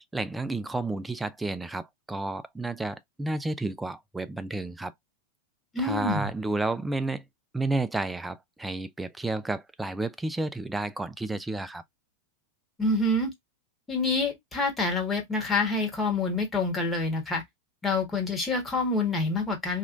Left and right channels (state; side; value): normal; both; correlation 0.45